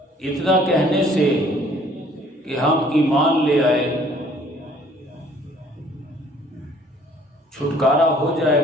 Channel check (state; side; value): normal; both; correlation 0.57